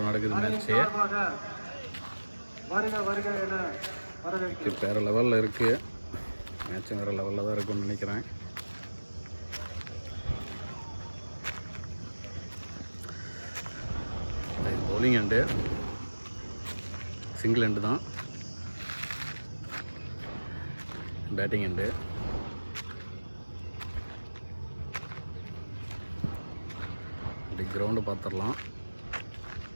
நடக்குது மேட்ச்சு. விக்கெட் வேறு லெவலில் இருக்குது. மேட்சும் வேறு லெவலில் தான் இருக்குன்னு நினைக்கிறேன். பவுலிங் எண்டு, சிங்கிள் எண்டு தான். Batting end. இப்படி கிரவுண்டு பார்த்துடலாம்.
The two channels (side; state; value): both; inverted; correlation -1.00